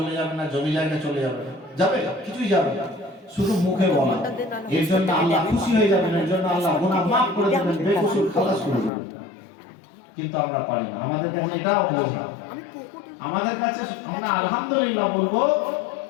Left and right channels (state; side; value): drops out; right; at 8.9 s